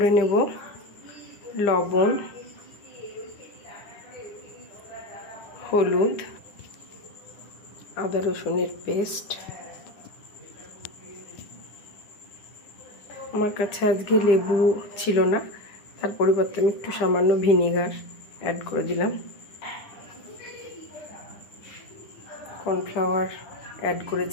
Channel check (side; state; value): right; late; 9.9 ms